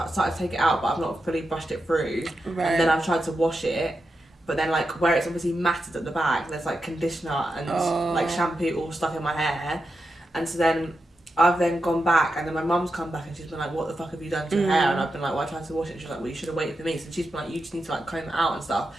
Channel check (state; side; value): normal; both; correlation 0.88